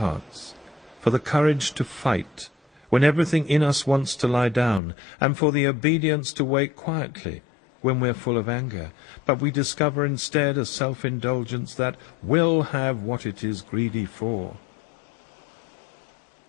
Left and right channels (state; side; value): drops out; right; at 4.8 s